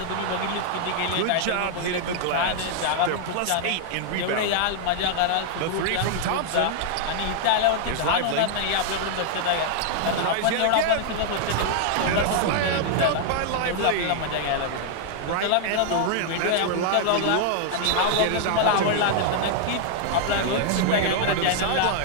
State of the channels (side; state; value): both; different; correlation 0.00